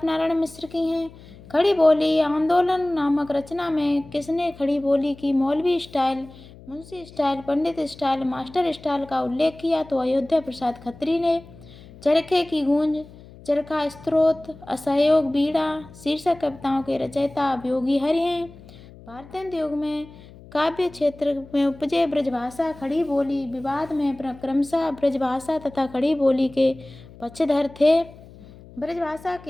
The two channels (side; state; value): left; noise; hum, 20 dB below the sound